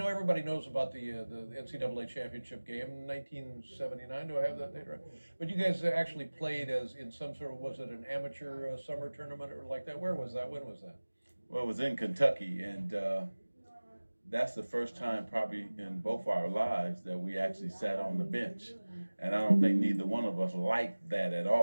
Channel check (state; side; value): inverted; both; correlation -1.00